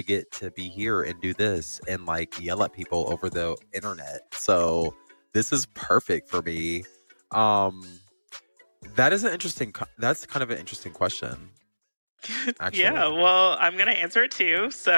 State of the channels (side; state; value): both; inverted; correlation -1.00